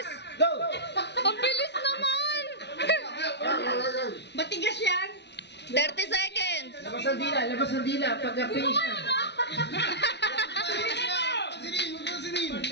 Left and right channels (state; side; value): late; right; 0.50 ms